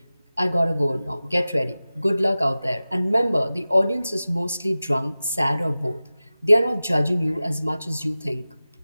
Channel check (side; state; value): both; inverted; correlation -0.96